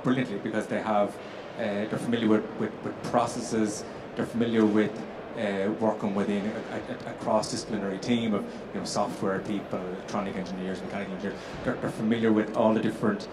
brilliantly because they're familiar with processes, they're familiar with working within a cross-disciplinary team of software people, electronic engineers, mechanical engineers. They're familiar with all the different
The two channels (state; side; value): identical; both; correlation 1.00